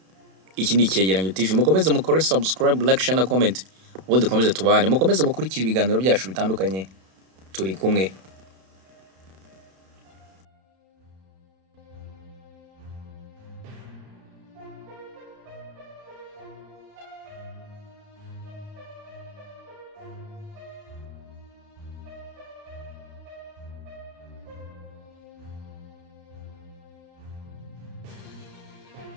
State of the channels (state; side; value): late; left; 32 ms